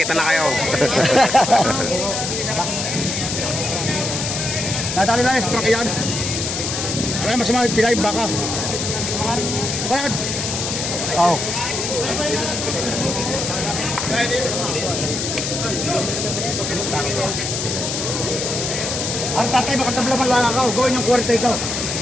na kayo. Nadali lang yung truck yan. Ano yung masama yung pilay, baka. Bakit? Oo. Ang tatay, makatablaman lang ako. Gawin yung kwarta ito.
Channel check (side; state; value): left; noise; hiss, 3 dB below the sound